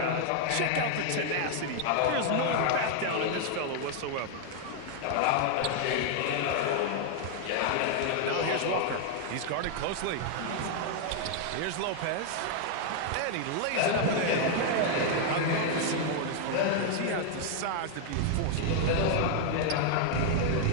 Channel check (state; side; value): different; both; correlation 0.00